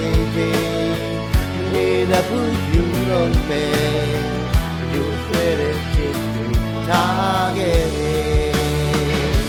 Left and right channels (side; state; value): both; identical; correlation 1.00